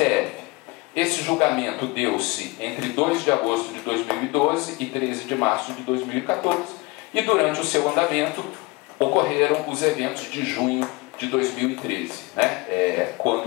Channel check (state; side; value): quieter; right; 24.4 dB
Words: Esse julgamento deu-se entre 2 de agosto de 2012 e 13 de março de 2014, e durante o seu andamento ocorreram os eventos de junho de 2013, né?